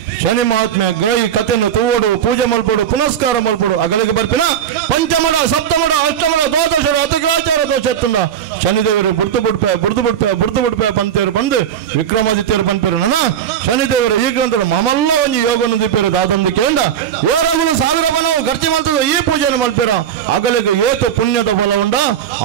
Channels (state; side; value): quieter; left; 9.3 dB